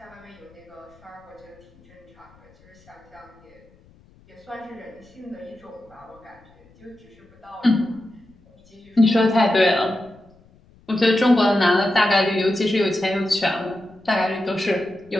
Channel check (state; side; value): noise; left; rumble, 29 dB below the sound